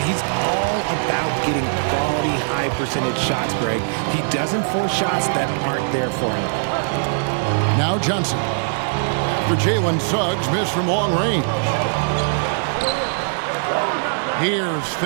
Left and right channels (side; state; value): left; silent; digital silence